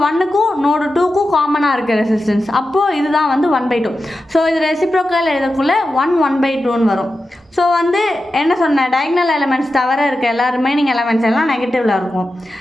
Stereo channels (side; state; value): both; normal; correlation 0.91